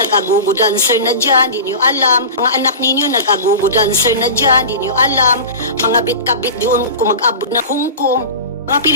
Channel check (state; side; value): inverted; both; correlation -0.31